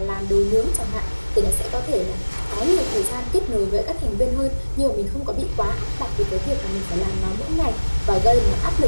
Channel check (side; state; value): both; inverted; correlation -1.00